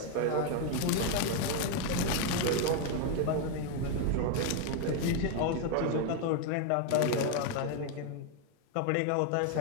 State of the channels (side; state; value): both; different; correlation 0.01